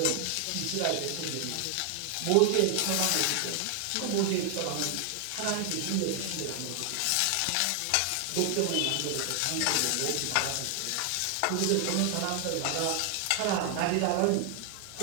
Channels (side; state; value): both; different; correlation 0.00